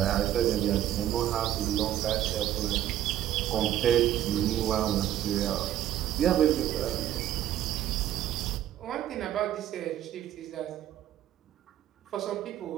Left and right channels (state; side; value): quieter; left; 11.9 dB